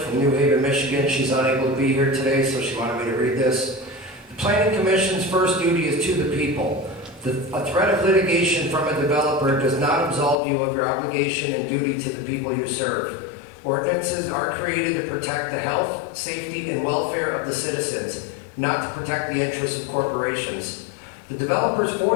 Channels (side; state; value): right; drops out; at 10.4 s